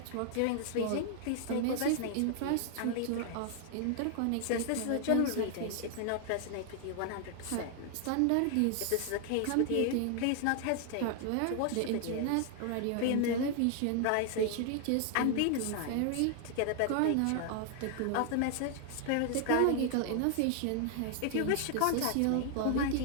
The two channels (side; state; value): both; different; correlation 0.00